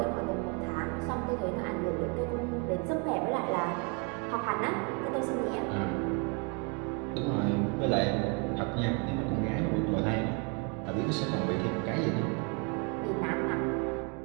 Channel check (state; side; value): quieter; left; 34.7 dB